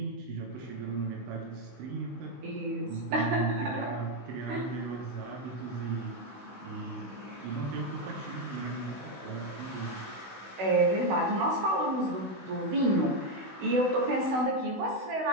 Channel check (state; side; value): late; left; 16 ms